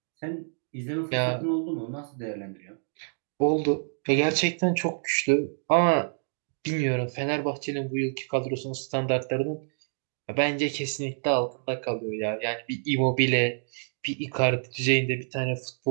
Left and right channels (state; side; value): silent; left; digital silence